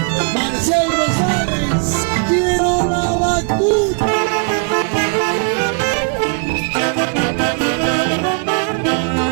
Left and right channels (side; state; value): left; quieter; 40.0 dB